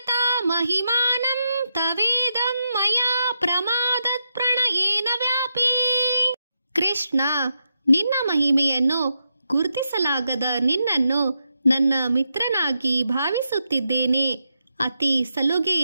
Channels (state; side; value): inverted; both; correlation -0.85